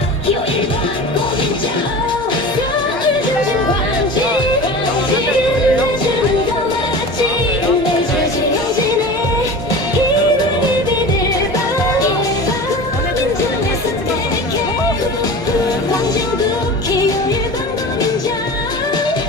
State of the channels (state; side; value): normal; both; correlation 0.34